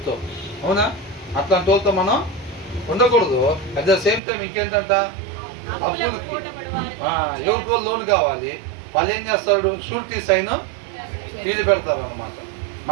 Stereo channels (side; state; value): left; drops out; at 4.2 s